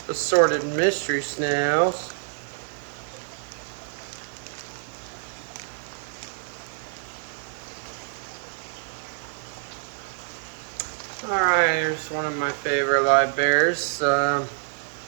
assorted mystery snails. Alright, here's one of my favorite live bears.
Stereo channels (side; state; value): left; silent; digital silence